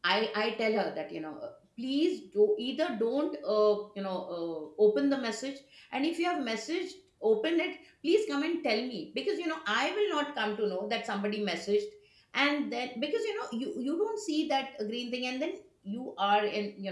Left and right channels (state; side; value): identical; both; correlation 1.00